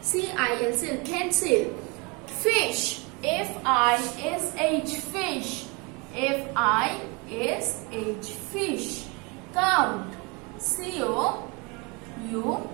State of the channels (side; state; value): left; quieter; 29.0 dB